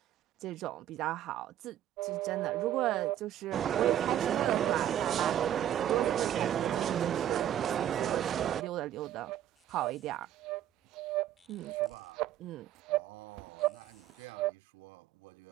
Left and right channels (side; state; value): left; quieter; 11.4 dB